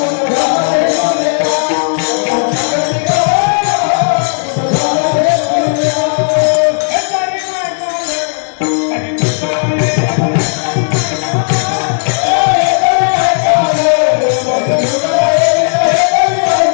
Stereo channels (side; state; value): right; silent; digital silence